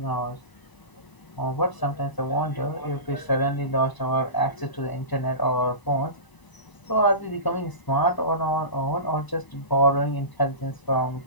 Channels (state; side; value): late; right; 1.0 ms